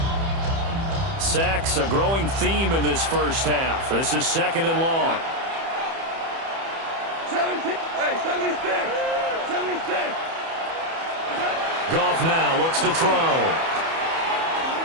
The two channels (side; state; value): left; late; 30 ms